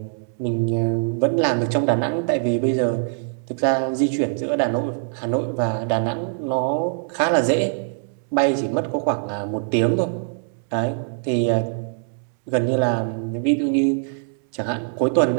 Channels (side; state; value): left; silent; 64 dB below the other